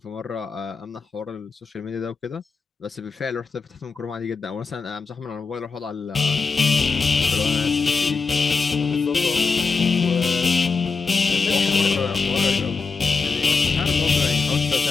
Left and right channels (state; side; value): quieter; right; 4.7 dB